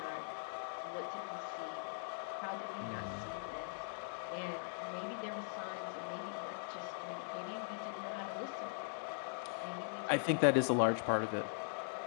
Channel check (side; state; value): right; silent; digital silence